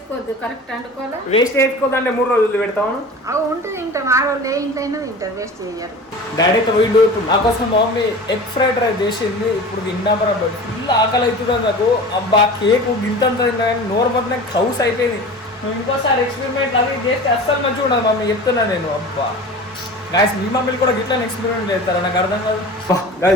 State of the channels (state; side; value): normal; both; correlation 0.36